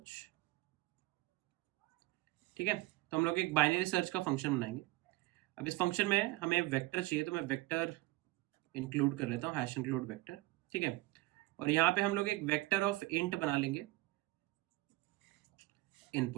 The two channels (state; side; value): quieter; left; 19.7 dB